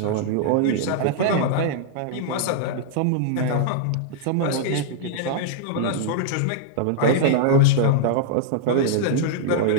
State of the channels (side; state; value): both; different; correlation -0.01